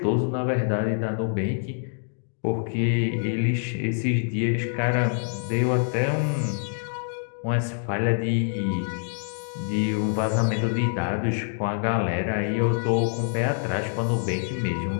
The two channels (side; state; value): right; silent; 61 dB below the other